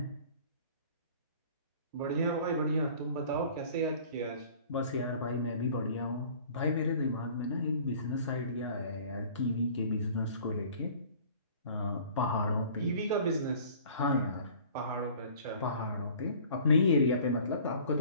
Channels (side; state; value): both; inverted; correlation -0.49